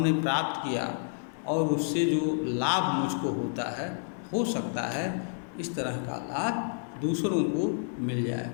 प्राप्त किया और उससे जो लाभ मुझको होता है, हो सकता है इस तरह का लाभ दूसरों को मिल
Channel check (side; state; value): right; silent; digital silence